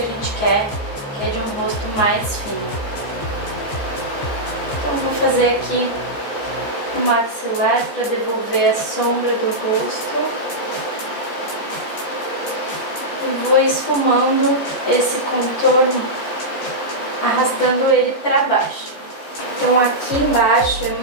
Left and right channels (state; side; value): late; right; 14 ms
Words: gente quer, que é de um rosto mais fino. Então vou fazer aqui o maxilar para devolver a sombra do rosto. E vou esfumando esse contorno, arrastando ele para baixo. Então aqui embaixo é